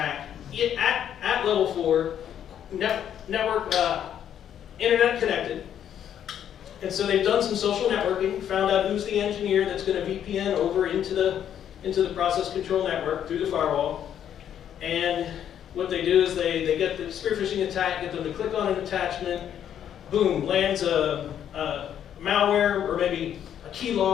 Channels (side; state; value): right; quieter; 9.7 dB